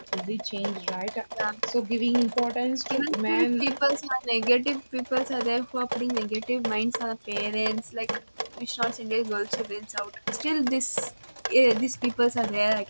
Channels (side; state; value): both; inverted; correlation -1.00